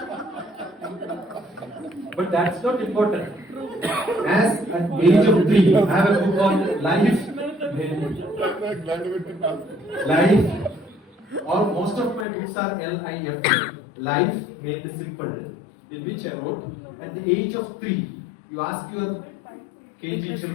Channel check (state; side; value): drops out; right; at 12.2 s